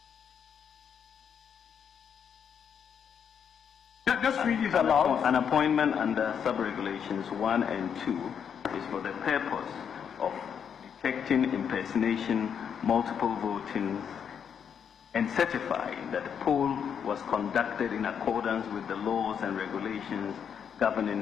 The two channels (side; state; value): right; quieter; 7.7 dB